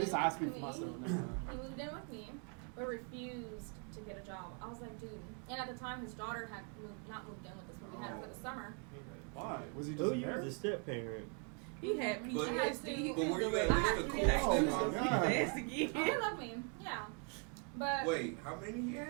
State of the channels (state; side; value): quieter; left; 38.1 dB